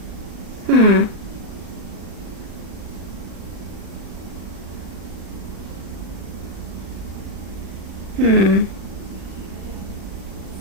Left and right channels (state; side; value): late; left; 37 ms